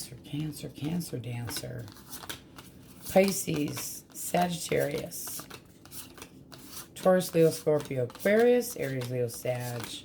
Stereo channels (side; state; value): both; identical; correlation 1.00